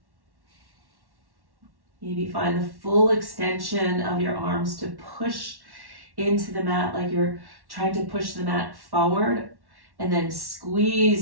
Maybe find the full extension of your arms to push into the mat like you're trying to push the mat forward, and then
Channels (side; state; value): left; late; 1.1 ms